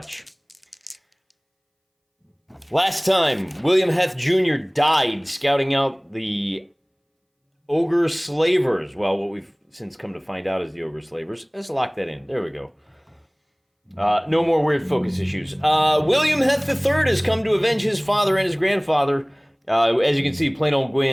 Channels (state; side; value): identical; both; correlation 1.00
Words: Last time, William Heth Jr. died scouting out the Ogre Slavers. Well, what we've since come to find out is the Ogre Slavers. Let's lock that in. There we go. No more weird focus issues. William Heth III has come to avenge his father and his grandfather. As you can see, plain old